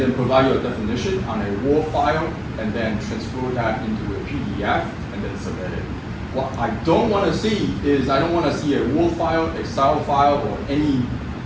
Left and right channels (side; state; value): both; identical; correlation 1.00